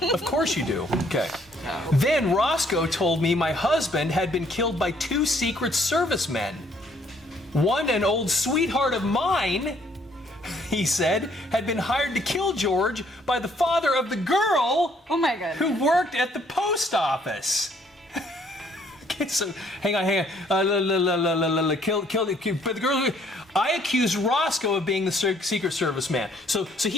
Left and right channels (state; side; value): normal; both; correlation 0.64